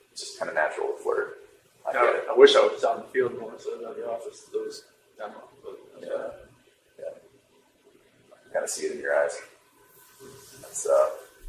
it's just kind of natural to flirt. I get it. I wish I was out in the field more instead of at the office. Those demo. Yeah. I kind of see it in your eyes.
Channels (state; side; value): identical; both; correlation 1.00